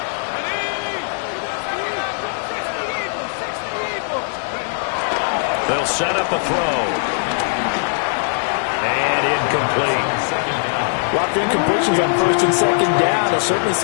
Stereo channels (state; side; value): silent; right; digital silence